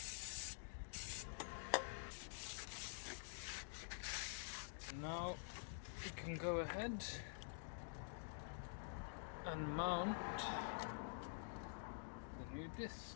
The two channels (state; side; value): silent; right; digital silence